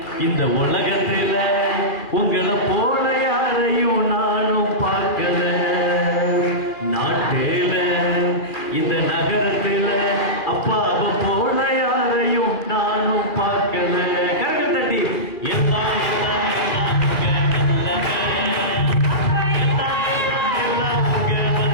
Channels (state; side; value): late; right; 2.4 ms